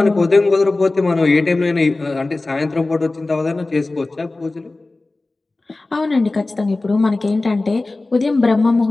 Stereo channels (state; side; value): quieter; right; 3.1 dB